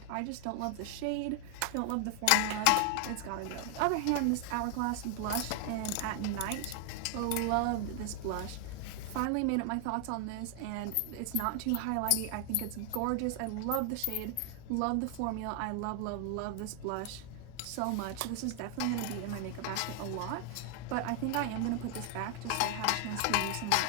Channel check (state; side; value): different; both; correlation 0.00